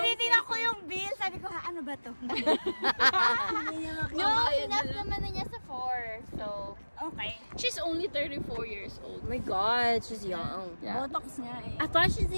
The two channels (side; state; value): both; inverted; correlation -1.00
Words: ko yung bill. Sabi ko, ano ba to? No, enough naman na niya sa 4. So, Okay. She's only 34 years old. oh my God, she's young. Yeah. Botox nga eh. I thought she's